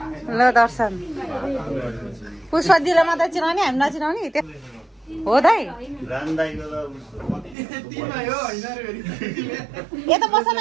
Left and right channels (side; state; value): left; drops out; at 7.6 s